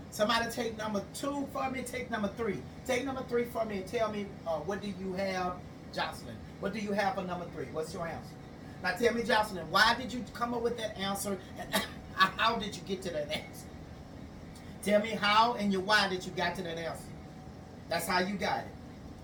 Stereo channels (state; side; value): identical; both; correlation 1.00